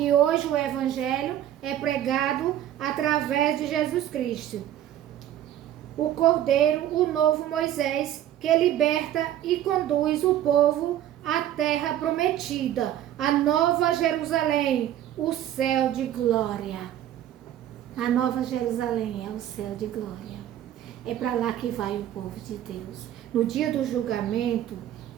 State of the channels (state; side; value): quieter; left; 11.8 dB